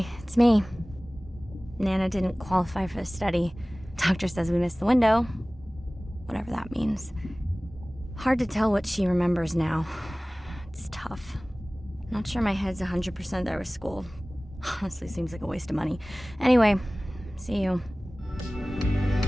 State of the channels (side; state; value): both; normal; correlation 0.98